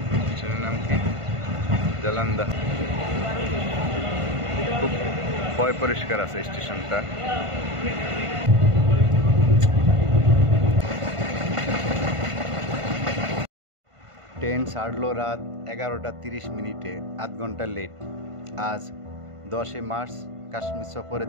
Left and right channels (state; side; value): late; left; 1.5 ms